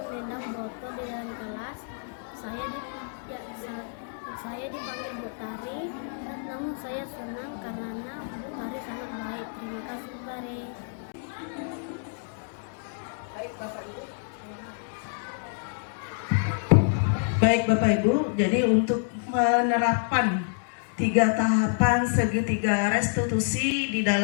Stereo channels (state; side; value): silent; right; digital silence